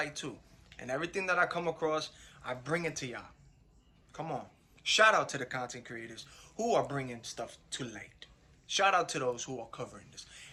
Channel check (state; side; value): identical; both; correlation 1.00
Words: too. And everything that I come across, I bring it to y'all. Come on. Shout out to the content creators who are bringing stuff to light. Shout out to those who are covering this.